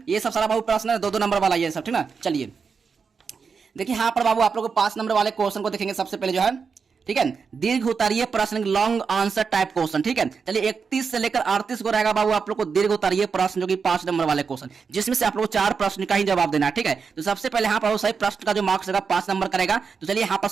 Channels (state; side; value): quieter; left; 5.6 dB